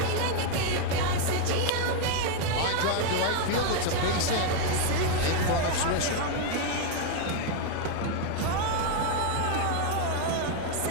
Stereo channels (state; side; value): different; both; correlation 0.00